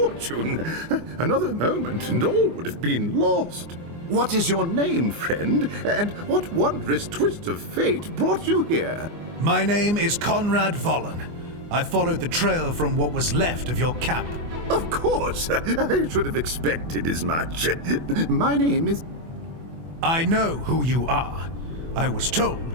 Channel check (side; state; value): left; late; 24 ms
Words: Another moment and all would have been lost. What is your name, friend? And what wondrous twist of fate brought you here? My name is Conrad Vollen. I followed the trail from what was left of your camp. Of course! I should have expected as much. My name is... I know who you are. I was